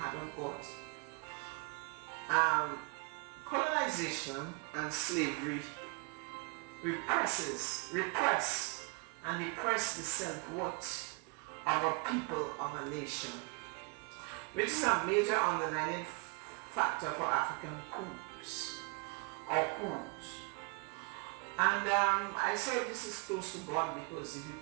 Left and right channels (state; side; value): quieter; left; 31.8 dB